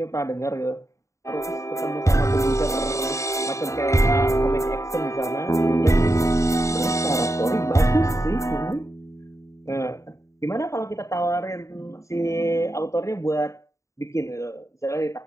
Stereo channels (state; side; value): late; right; 0.15 ms